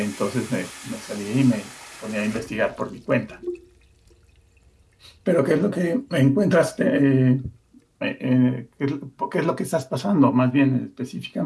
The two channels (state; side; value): identical; both; correlation 1.00